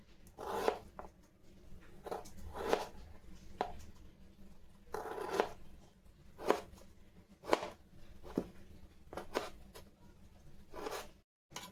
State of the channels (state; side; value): identical; both; correlation 1.00